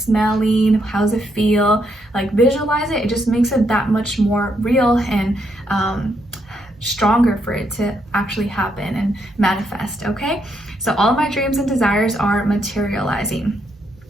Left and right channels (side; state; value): both; normal; correlation 0.77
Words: How does it feel? Like visualize it. It just makes it that much more real and stronger for it to actually happen and manifest. Okay, so all of my dreams and desires are materializing.